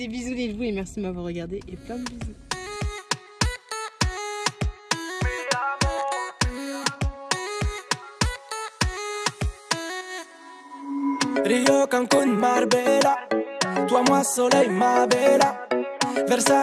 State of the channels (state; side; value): identical; both; correlation 1.00